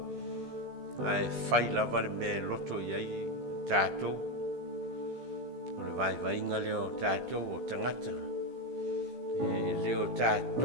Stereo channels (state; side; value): late; left; 16 ms